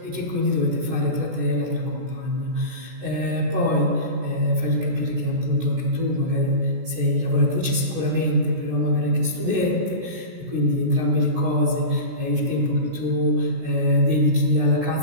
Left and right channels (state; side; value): late; left; 16 ms